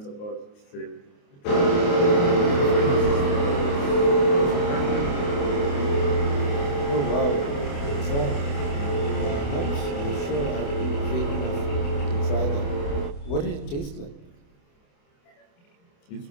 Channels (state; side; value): late; right; 28 ms